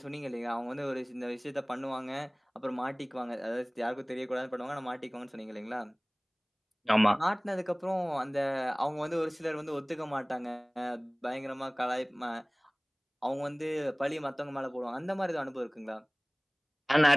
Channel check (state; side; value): identical; both; correlation 1.00